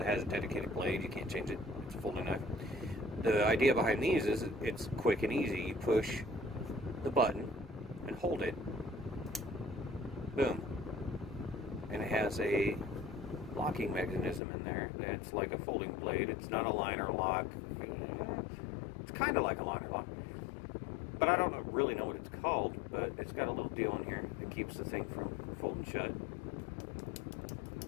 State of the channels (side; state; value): right; drops out; at 14.4 s